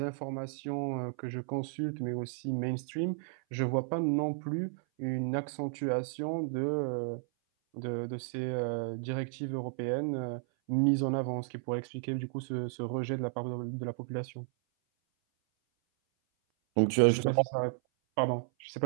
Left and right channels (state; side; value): silent; left; 56 dB below the other